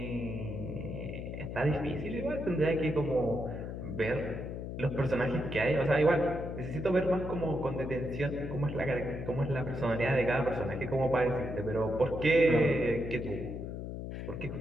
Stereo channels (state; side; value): noise; left; hum, 6 dB below the sound